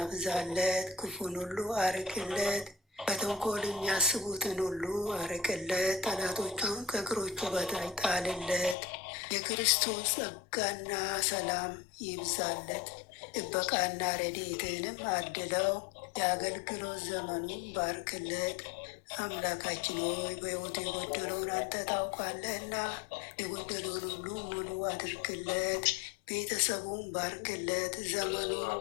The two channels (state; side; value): drops out; right; at 8.8 s